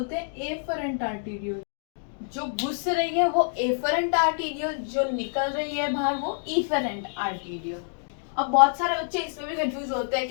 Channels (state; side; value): silent; right; digital silence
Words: हैं एफरेंट आर्टीरियोल। जो घुस रही है वो एफरेंट आर्टीरियोल, जो निकल रही है बाहर वो इफरेंट आर्टीरियोल। अब बहुत सारे बच्चे इसमें भी कंफ्यूज होते हैं